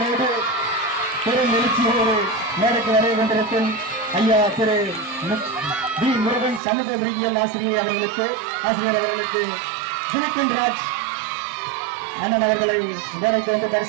பெரும் எழுச்சியோடு மேடைக்கு வரை கொண்டிருக்கும் ஐயா திரு டி முருகன் சமூக அறிவியல் ஆசிரியர் அவர்களுக்கு சுனித்தின் ராஜ் அண்ணன் அவர்களை மேடைக்கு வந்து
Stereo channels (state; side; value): drops out; left; at 6.6 s